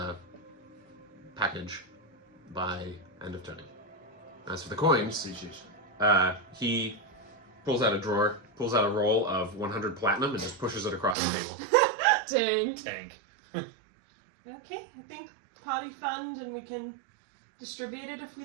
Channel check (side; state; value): left; drops out; at 11.2 s